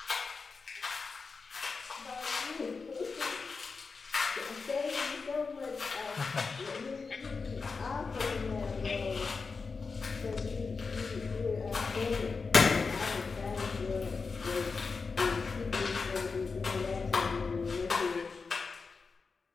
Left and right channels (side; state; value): right; quieter; 4.7 dB